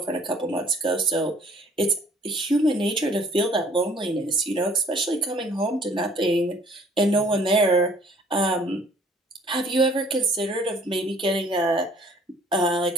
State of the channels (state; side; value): normal; both; correlation 0.56